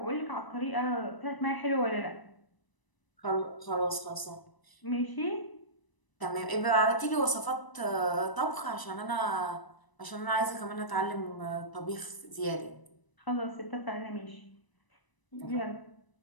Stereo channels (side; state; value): right; late; 1.0 ms